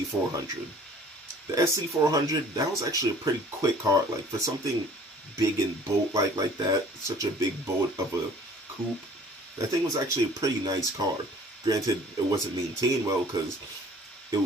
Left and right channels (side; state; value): both; normal; correlation 0.51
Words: The Sc400, that was actually a pretty quick car. Like, for something big and boat-like like that, such a big boat of a coupe, that thing was actually a pretty nice car. Granted, it wasn't maintained well because it